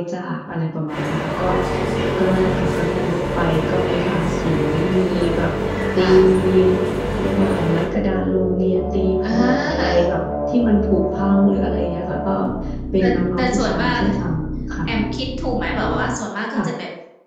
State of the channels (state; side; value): identical; both; correlation 1.00